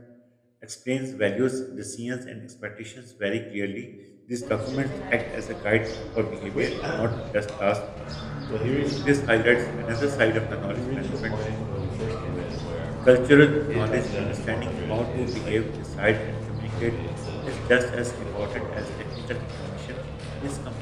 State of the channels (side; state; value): both; identical; correlation 1.00